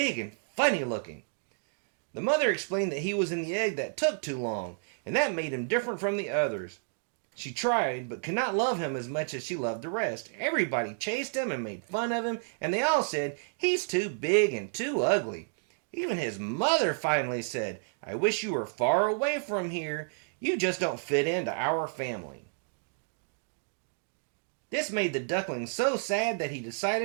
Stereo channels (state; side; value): silent; left; digital silence